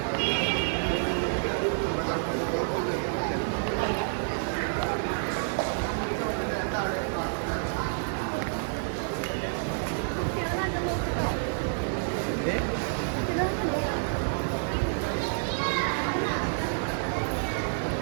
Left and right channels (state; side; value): silent; left; 59 dB below the other